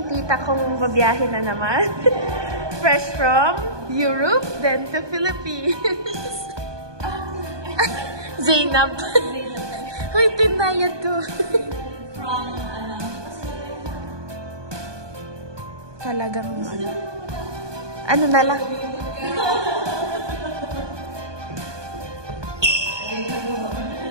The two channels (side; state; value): left; late; 1.2 ms